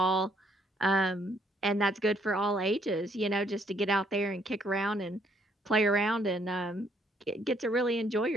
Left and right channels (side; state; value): both; normal; correlation 0.68